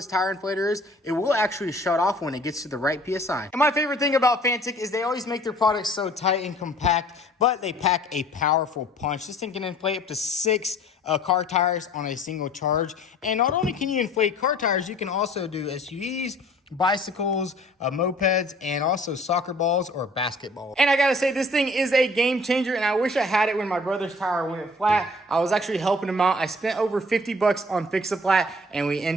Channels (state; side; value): normal; both; correlation 0.52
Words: tire inflator is it will actually shut off when it gets to the right PSI. And my favorite thing about Fantic is they always make their products so tight and compact, but they pack a powerful punch. This thing can inflate up to 6 car tires on a single charge. And not only can you inflate car tires, you can also do SUVs, bicycles, mopeds, and also soccer balls or basketballs. And I gotta say, this thing is a game changer, and I wish I had it when my brother's tire went flat. I was actually helping him out. I spent over 50 bucks on Fix-A-Flat, and we